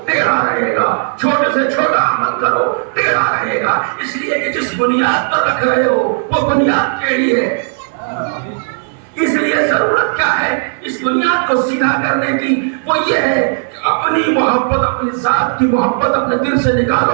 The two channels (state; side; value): silent; left; 63 dB below the other